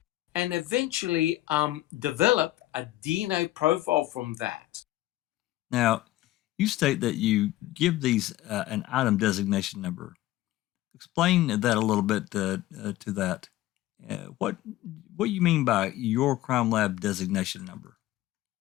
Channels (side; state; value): right; quieter; 15.8 dB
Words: and eventually developed a DNA profile from that. Now, you state that you give these an item designation number. Explain that a little bit to that. What you mean by your crime lab designation number?